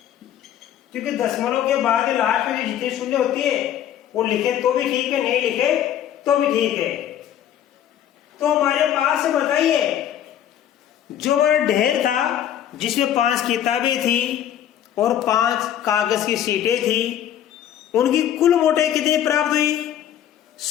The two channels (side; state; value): right; quieter; 10.7 dB